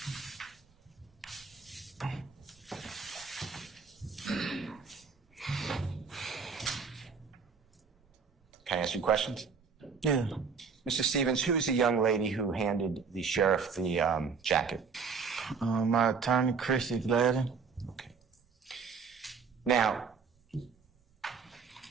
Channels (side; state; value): left; quieter; 5.5 dB